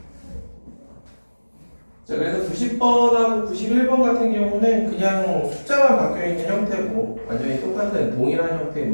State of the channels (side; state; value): both; inverted; correlation -1.00